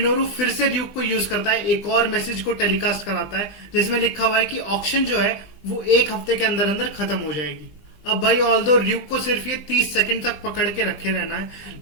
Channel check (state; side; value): late; right; 20 ms